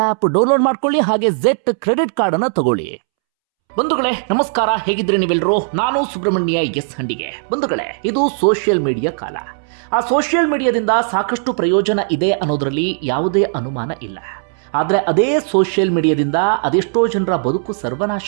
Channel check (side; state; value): left; silent; 68 dB below the other